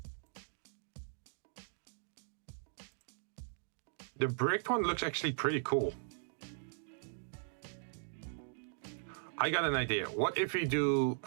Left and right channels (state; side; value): silent; left; digital silence